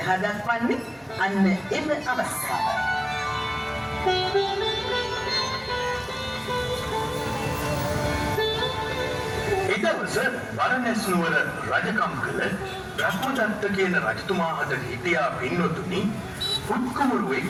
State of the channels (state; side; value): identical; both; correlation 1.00